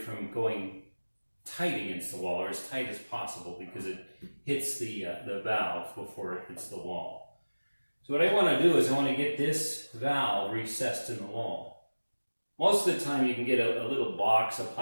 going tight against the wall, or as tight as possible, because it hits the valve before it hits the wall. So what I want to do is I want to get this valve recessed in the wall. Most of the time you can get a little box, a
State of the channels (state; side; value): inverted; both; correlation -1.00